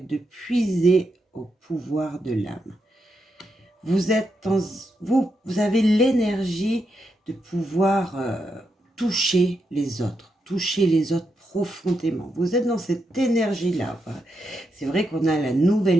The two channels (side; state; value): both; normal; correlation 0.83